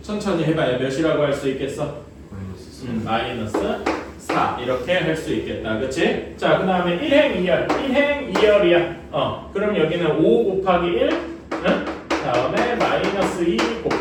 천천히 해봐야 몇이라고 할 수 있겠어? 마이너스 4 이렇게 할 수 있겠다. 그치? 자, 그 다음에 1행 2열 1행 2열이야. 그럼 여기는 5 곱하기 1 다음에 마이너스 2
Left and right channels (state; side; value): identical; both; correlation 1.00